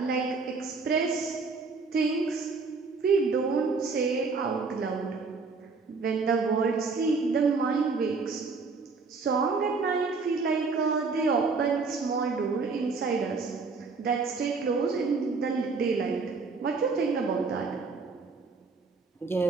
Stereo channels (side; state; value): left; quieter; 4.5 dB